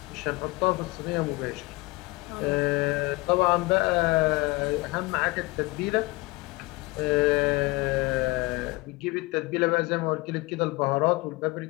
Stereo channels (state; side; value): quieter; right; 23.2 dB